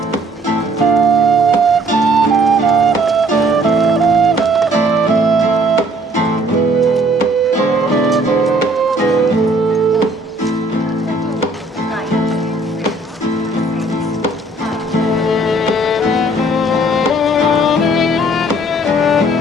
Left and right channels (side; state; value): both; normal; correlation 0.60